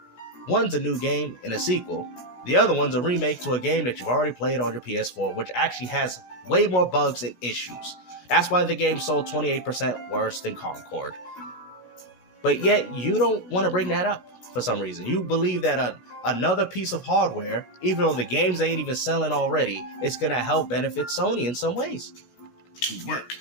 One's a new game and a sequel. The other one's a remake to a game that you've already played on your PS4, which actually has way more bugs and issues. That's why the game sold 28% worse than Concord. But yet, you don't want to bring that up for some reason. You believe that another piece of hardware, even though the games ain't even selling already, is going to help benefit Sony in some ways. To work.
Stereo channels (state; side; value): late; right; 16 ms